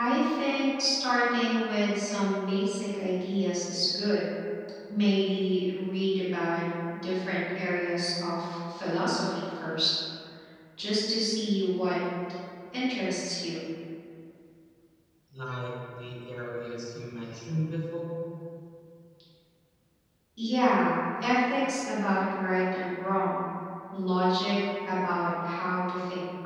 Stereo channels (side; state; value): both; identical; correlation 1.00